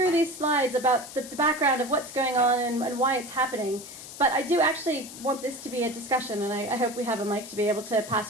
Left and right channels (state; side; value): noise; left; hiss, 13 dB below the sound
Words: these slides about the background of what's going on and why it's happening, but I do actually want this to be a discussion, and I hope we have a mic to be able to